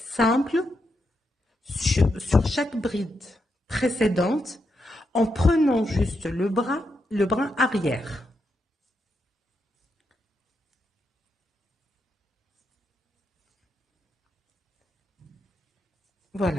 sur chaque bride précédente en prenant juste le brin arrière.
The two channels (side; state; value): both; normal; correlation 0.83